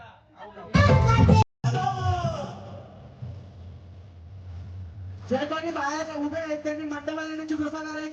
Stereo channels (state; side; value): identical; both; correlation 1.00